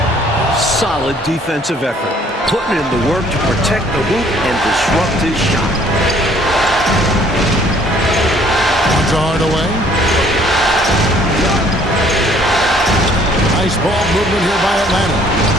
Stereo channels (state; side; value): normal; both; correlation 0.59